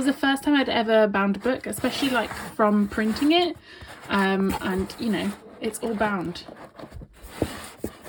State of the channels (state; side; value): identical; both; correlation 1.00